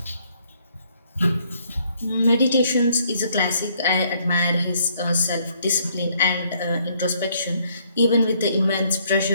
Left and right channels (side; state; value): both; inverted; correlation -0.67